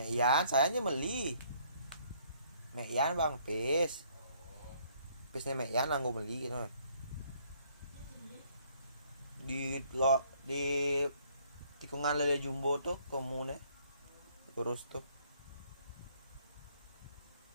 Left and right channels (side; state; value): both; inverted; correlation -0.64